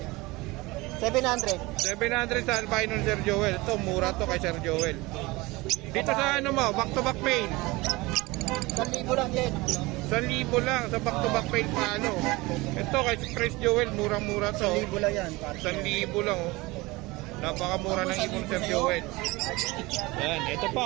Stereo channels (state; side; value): quieter; left; 22.2 dB